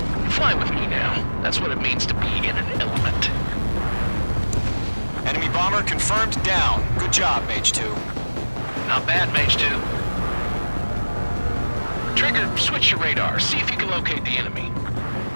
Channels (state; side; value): inverted; both; correlation -1.00